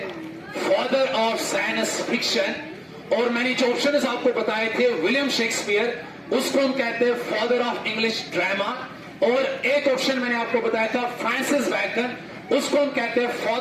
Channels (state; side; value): identical; both; correlation 1.00